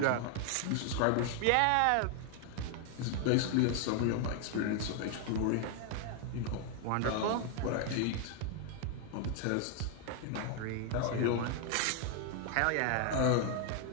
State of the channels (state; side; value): different; both; correlation 0.00